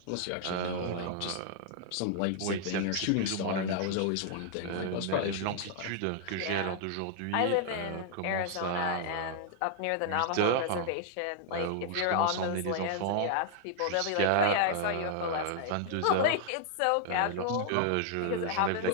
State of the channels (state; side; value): different; both; correlation -0.01